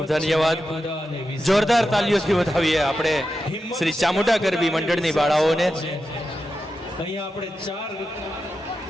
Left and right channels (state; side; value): normal; both; correlation 0.90